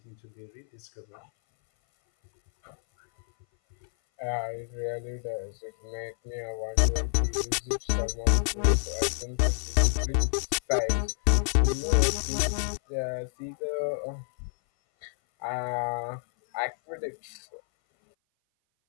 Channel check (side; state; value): right; silent; 57 dB below the other